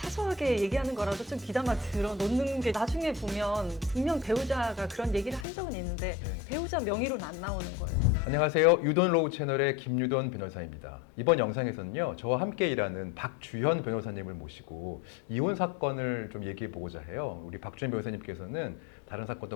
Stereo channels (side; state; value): right; drops out; at 5.5 s